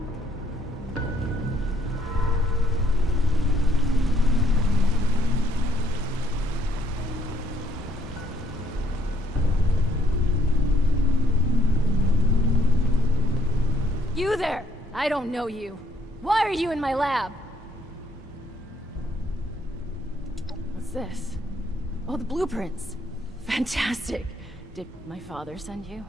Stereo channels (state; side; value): normal; both; correlation 0.67